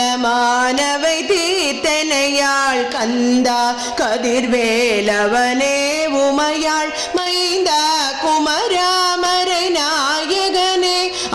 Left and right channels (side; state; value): both; identical; correlation 1.00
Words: தீர்த்தனையாள் கந்தா கதிர்வேலவனே உமையாள் மைந்தா குமராமரை நாயகனே